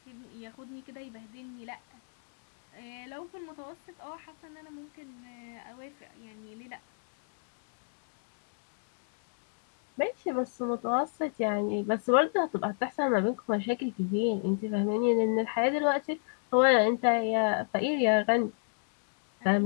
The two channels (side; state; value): right; silent; digital silence